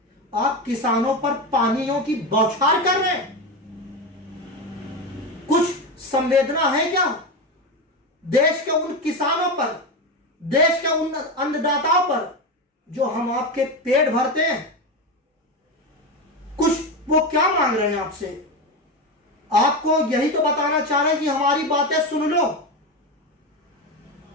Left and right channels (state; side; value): normal; both; correlation 0.17